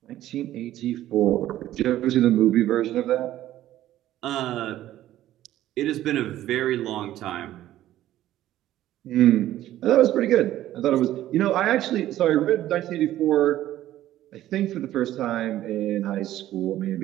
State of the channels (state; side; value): quieter; left; 13.6 dB